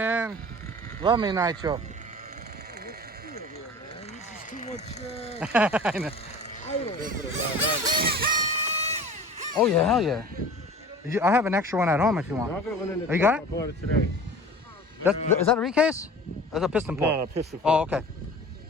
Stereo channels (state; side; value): normal; both; correlation 0.40